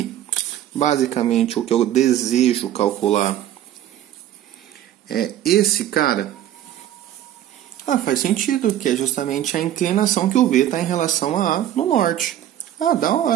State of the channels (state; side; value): quieter; left; 11.8 dB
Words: basicamente, o que eu desejo calcular é esse cara? Ah, faz sentido, que é justamente a inclinação que o V está em relação a A no norte. Ah, da